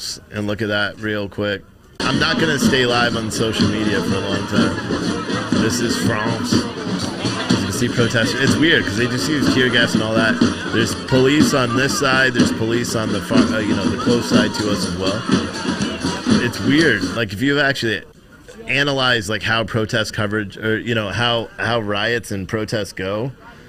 and look at that real quick. I'm not going to stay live on social media for a long time. This is France. As you can see, protesters. It's weird because they just use tear gas and all that. There's police on this side. There's police on the far, the close side to us as well. It's weird. Like, if you actually analyze like how protest coverage, or how riots and protests go,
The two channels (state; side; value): identical; both; correlation 1.00